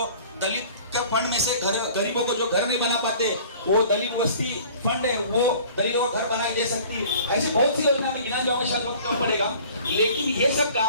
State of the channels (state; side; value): inverted; both; correlation -0.48